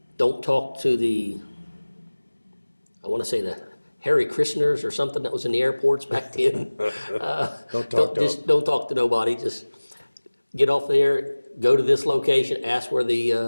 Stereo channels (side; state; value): both; inverted; correlation -1.00